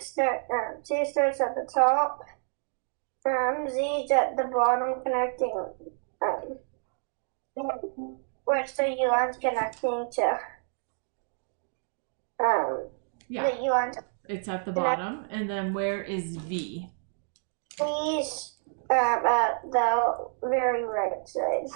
at the top. Z's at the bottom, connecting. Where's the U line's connecting to? Yeah, the U line's. It's at the bottom. And then where is V? V's at the very right side.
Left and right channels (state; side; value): silent; left; 59 dB below the other